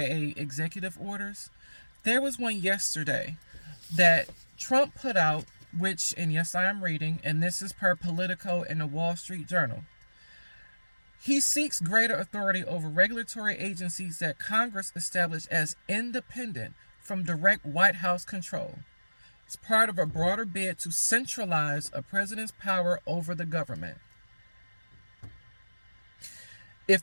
executive orders, there was one yesterday that Trump put out, which, and yes, I am reading, and this is per Politico and the Wall Street Journal. He seeks greater authority over regulatory agencies that Congress established as independent from direct White House control. It's part of a broader bid to centralize a president's power over the government. If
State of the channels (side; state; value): both; inverted; correlation -1.00